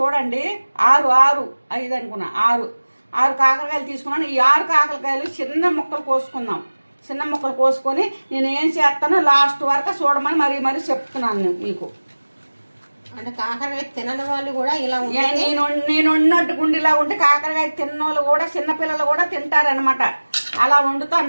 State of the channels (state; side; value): inverted; both; correlation -1.00